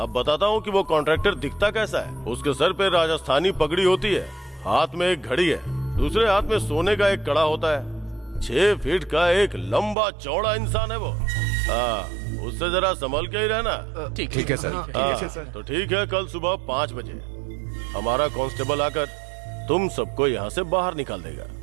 बताता हूँ कि वो कॉन्ट्रैक्टर दिखता कैसा है। उसके सर पे राजस्थानी पगड़ी होती है, हाथ में एक घड़ी है, दूसरे हाथ में सोने का एक कड़ा होता है। 6 फीट का एक लंबा चौड़ा इंसान है वो। उससे जरा संभल के ही रहना। ठीक है सर। तो ठीक है, कल सुबह 5 बजे हमारा कांस्टेबल आकर तुम सबको यहाँ से बाहर निकाल देगा,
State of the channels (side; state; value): left; drops out; at 10.0 s